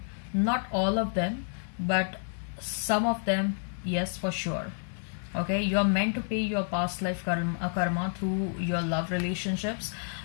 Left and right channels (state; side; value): silent; right; digital silence